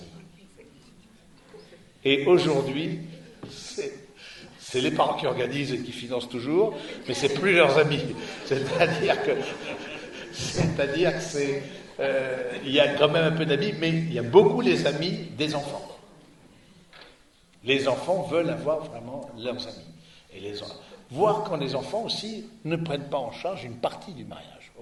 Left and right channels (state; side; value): identical; both; correlation 1.00